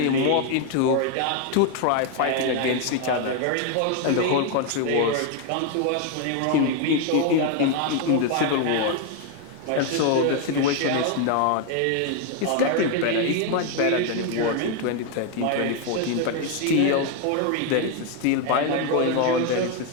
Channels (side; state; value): both; different; correlation 0.01